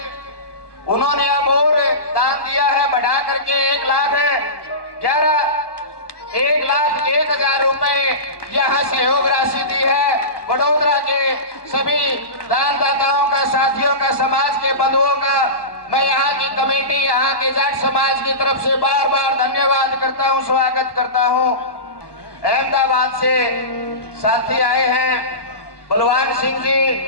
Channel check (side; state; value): right; late; 1.2 ms